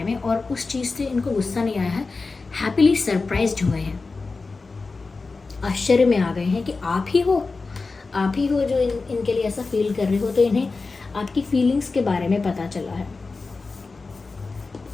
में, और उस चीज़ से इनको गुस्सा नहीं आया है, हैप्पीली सरप्राइज्ड हुए हैं, आश्चर्य में आ गए हैं कि आप ही हो जो इनके लिए ऐसा फील कर रहे हो। तो इन्हें आपकी फीलिंग्स के बारे में पता चला है।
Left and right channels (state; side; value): quieter; right; 4.0 dB